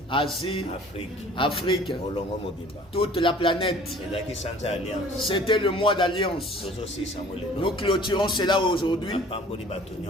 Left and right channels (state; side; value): normal; both; correlation 0.50